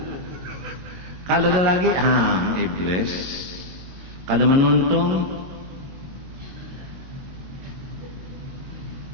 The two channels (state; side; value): late; left; 22 ms